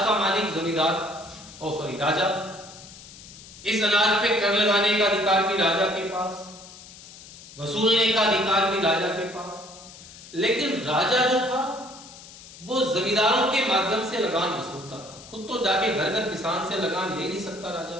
मालिक जमींदार राजा। इस अनाज पे कर लगाने का अधिकार भी राजा के पास, वसूलने का अधिकार भी राजा के पास। लेकिन राजा जो था वो जमींदारों के माध्यम से लगान वसूलता था, खुद तो जाके घर घर किसान से लगान ले नहीं सकता राजा,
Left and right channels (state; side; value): noise; left; hiss, 18 dB below the sound